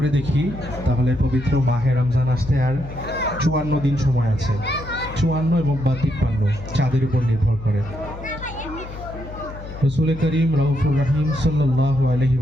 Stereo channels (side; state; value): left; noise; hum, 12 dB below the sound